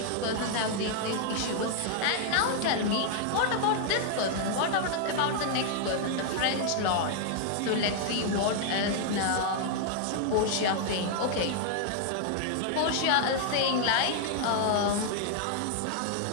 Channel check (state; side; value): different; both; correlation 0.00